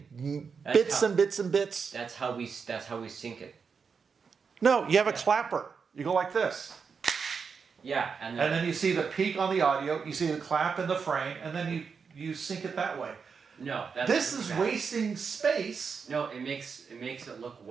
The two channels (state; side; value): quieter; left; 5.7 dB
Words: That's bits how- and bits and bits. That's how we sync it. No, you have a clapper. You go like this. Yeah, and And then you see the peak on the audio, you see the clap in the frame, and then you sync it that way. no, that's This is bad. wasting space. No, it makes it look